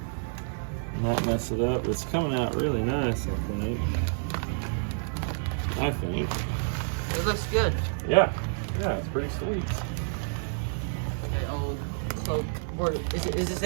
Not mess it up. It's coming out really nice, I think. It looks good. Yeah, it's pretty sweet. Okay, old cloak. Or is this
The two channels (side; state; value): left; silent; digital silence